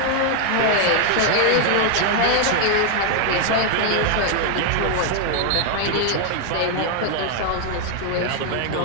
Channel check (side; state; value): both; different; correlation 0.00